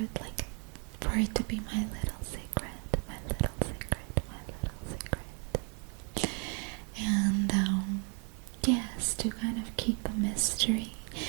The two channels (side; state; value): left; quieter; 38.2 dB